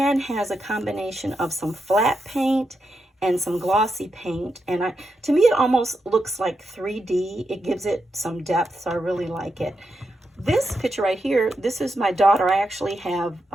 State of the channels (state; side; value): normal; both; correlation 0.85